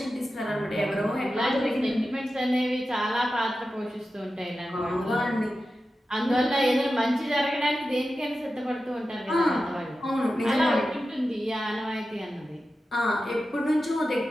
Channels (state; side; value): normal; both; correlation 0.92